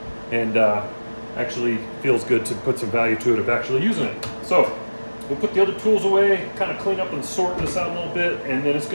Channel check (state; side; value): inverted; both; correlation -1.00